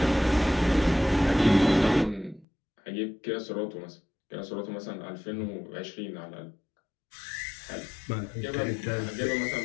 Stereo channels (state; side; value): drops out; right; at 2.5 s